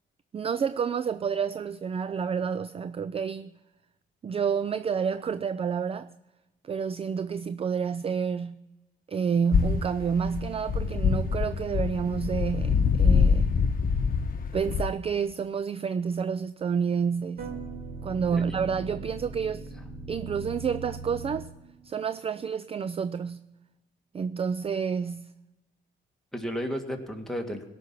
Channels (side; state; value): both; normal; correlation 0.63